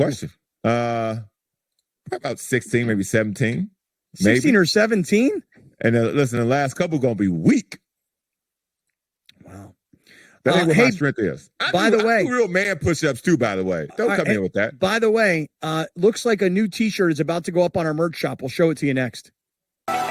About 16, maybe 17. 16 or 17? And listen, the last couple going to be weak. Wow. That ain't what my strength is. I do real man push-ups too, by the way. Don't come in with that. By the way, looks like a new T-shirt is about to go up on our merch shop. We'll show it to you next.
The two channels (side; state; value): both; identical; correlation 1.00